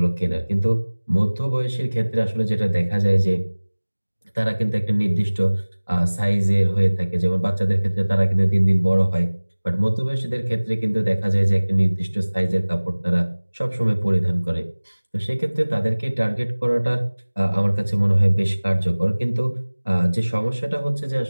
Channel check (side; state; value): both; inverted; correlation -1.00